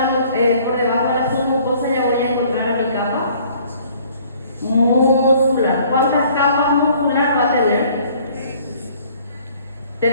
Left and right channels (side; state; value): both; inverted; correlation -0.56